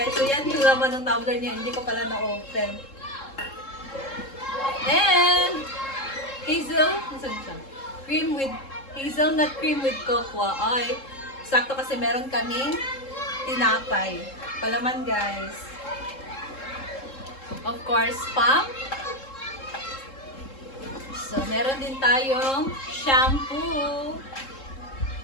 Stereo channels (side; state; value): right; late; 3.7 ms